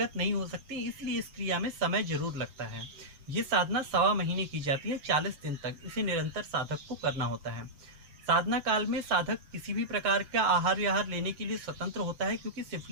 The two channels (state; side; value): late; left; 7.0 ms